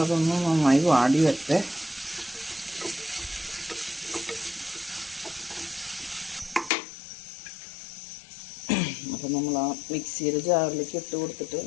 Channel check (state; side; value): drops out; right; at 6.7 s